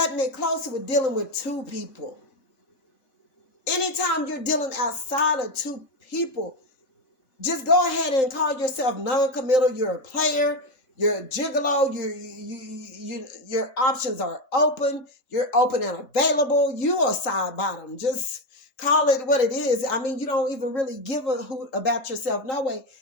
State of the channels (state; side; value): late; right; 3.8 ms